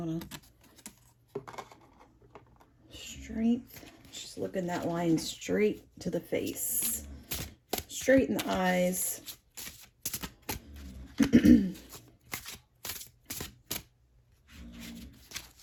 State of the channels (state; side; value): identical; both; correlation 1.00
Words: Strength. Just looking that line straight to the face. Straight in the eyes. The